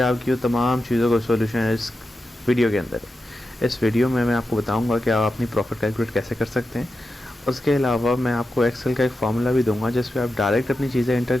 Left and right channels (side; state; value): both; normal; correlation 0.90